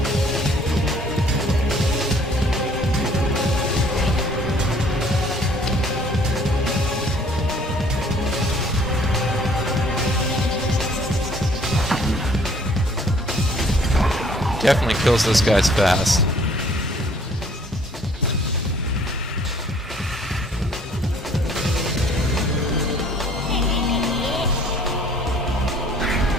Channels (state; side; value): normal; both; correlation 0.58